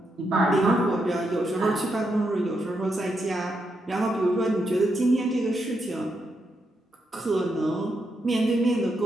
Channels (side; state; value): both; normal; correlation 0.82